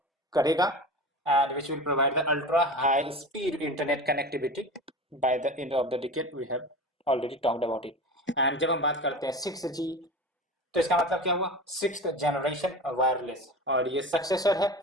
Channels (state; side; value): normal; both; correlation 0.31